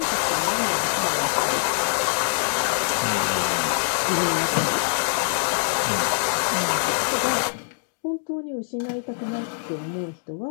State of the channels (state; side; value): silent; right; digital silence